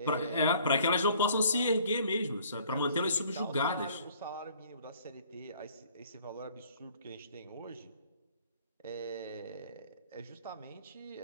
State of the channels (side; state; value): both; inverted; correlation -0.56